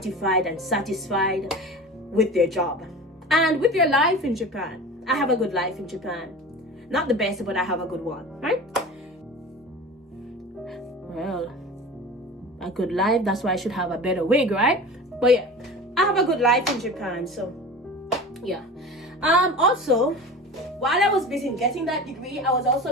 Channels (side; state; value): both; normal; correlation 0.34